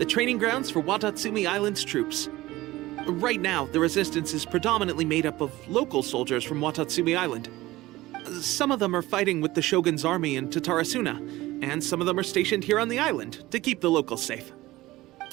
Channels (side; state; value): left; quieter; 18.0 dB